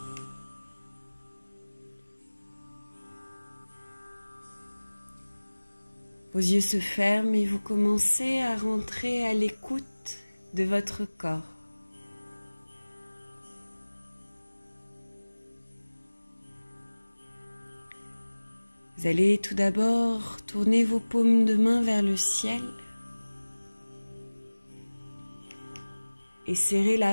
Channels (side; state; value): both; inverted; correlation -1.00